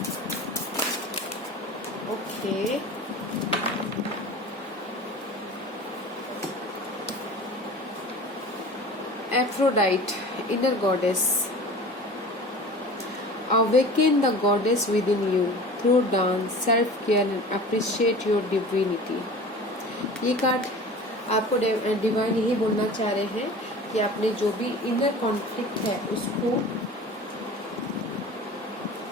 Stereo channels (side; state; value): both; normal; correlation 0.38